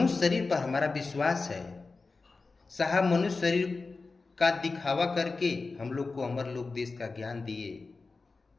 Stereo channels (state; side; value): quieter; right; 3.9 dB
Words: शरीर पर हमारा विश्वास है। साहब मनुष्य शरीर का दिखावा करके हम लोग को अमर लोक देश का ज्ञान दिए।